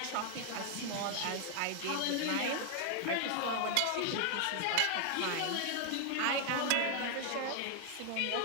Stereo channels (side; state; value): both; different; correlation 0.00